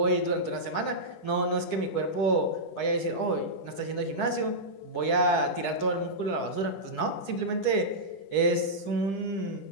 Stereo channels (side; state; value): right; late; 10 ms